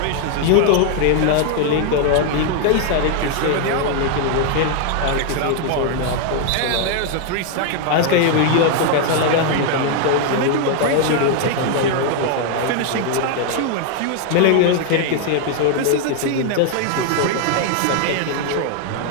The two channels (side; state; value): both; different; correlation 0.00